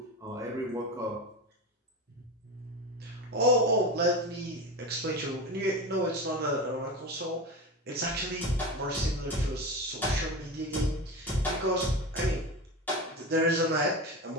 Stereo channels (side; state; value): both; normal; correlation 0.24